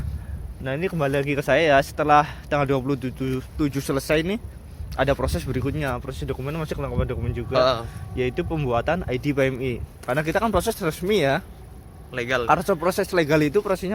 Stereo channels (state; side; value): identical; both; correlation 1.00